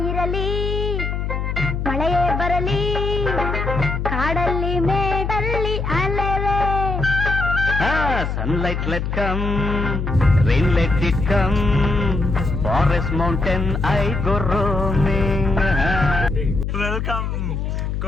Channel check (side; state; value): left; noise; hum, 2 dB below the sound